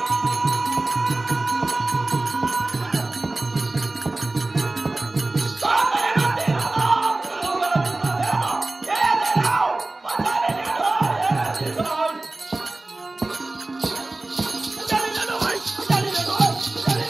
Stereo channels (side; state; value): left; quieter; 3.0 dB